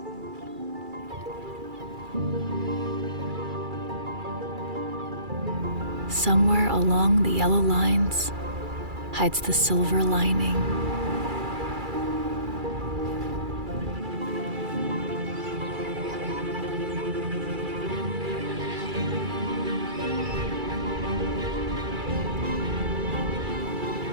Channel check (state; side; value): late; left; 2.3 ms